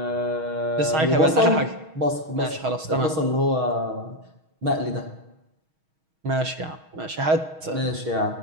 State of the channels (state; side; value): late; left; 6.3 ms